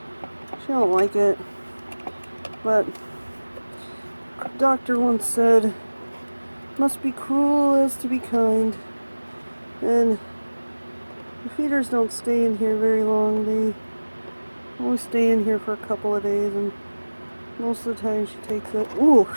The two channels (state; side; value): inverted; both; correlation -1.00